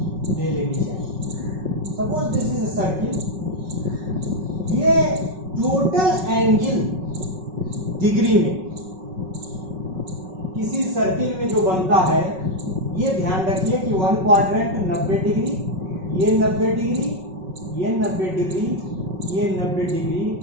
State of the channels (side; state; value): left; late; 5.4 ms